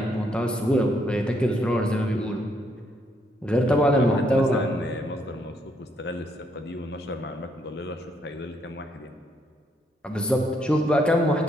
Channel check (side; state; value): both; normal; correlation 0.73